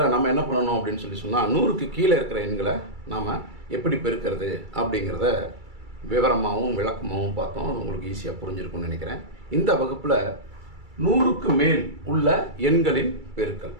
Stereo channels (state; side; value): late; left; 2.3 ms